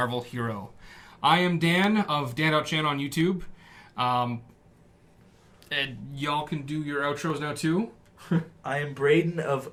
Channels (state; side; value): identical; both; correlation 1.00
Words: hero? I am Dan of Dan.Chan on YouTube. And y'all can do your outros now too. I am Braydon of